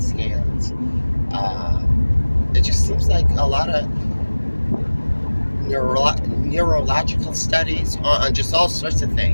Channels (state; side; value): inverted; both; correlation -1.00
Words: scans. It just seems like a lot of neurological studies on just all sorts of